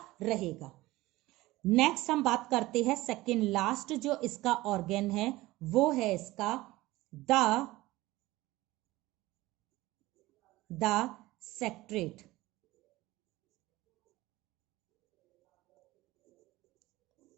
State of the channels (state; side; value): quieter; left; 18.6 dB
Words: रहेगा। नेक्स्ट हम बात करते हैं सेकेंड लास्ट जो इसका ऑर्गन है, वो है इसका द सेक्रेटरेट।